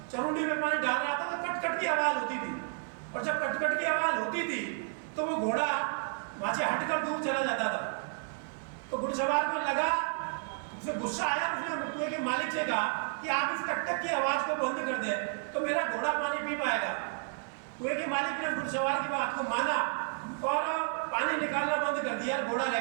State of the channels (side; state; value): left; silent; 57 dB below the other